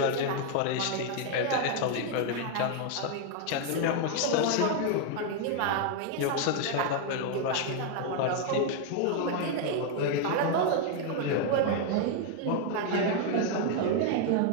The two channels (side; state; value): both; different; correlation 0.01